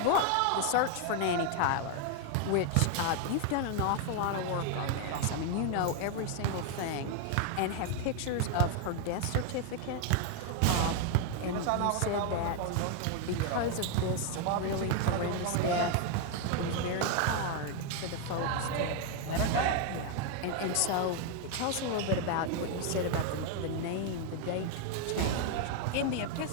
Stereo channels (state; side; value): different; both; correlation 0.01